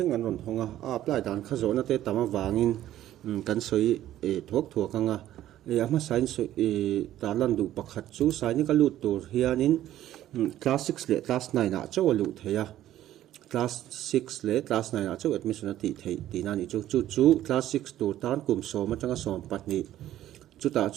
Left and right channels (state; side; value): quieter; left; 13.0 dB